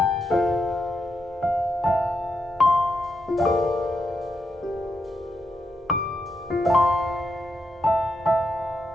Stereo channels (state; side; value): normal; both; correlation 0.83